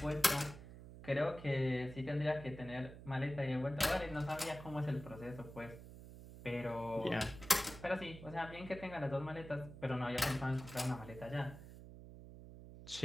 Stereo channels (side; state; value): right; noise; hum, 14 dB below the sound